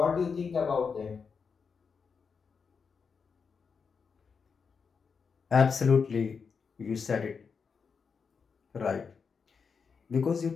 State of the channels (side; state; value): right; quieter; 5.7 dB